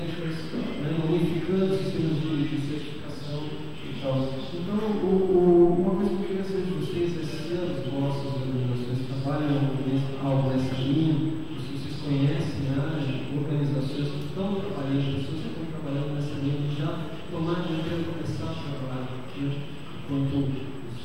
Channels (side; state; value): both; identical; correlation 1.00